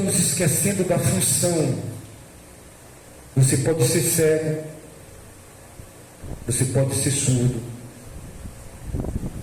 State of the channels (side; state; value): both; identical; correlation 1.00